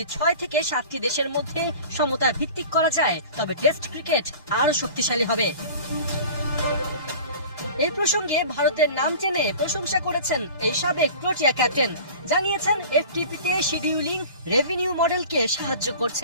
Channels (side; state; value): both; inverted; correlation -0.40